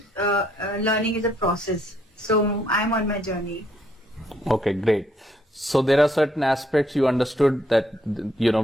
learning is a process. So I'm on my journey. Okay, great. So there are certain aspects you understood that,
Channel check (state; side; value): normal; both; correlation 0.70